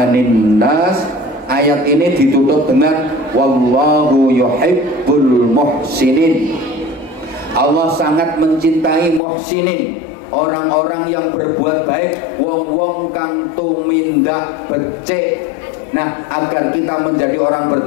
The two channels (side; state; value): right; drops out; at 9.2 s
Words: nas. Ayat ini ditutup dengan wallahu yuhibbul muhsinin. Allah sangat mencintai muhsinin, orang-orang yang berbuat baik, wong-wong kang tumindak becik. Nah, agar kita menjadi orang